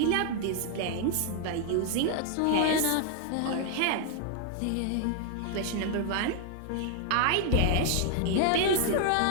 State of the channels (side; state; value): both; different; correlation 0.00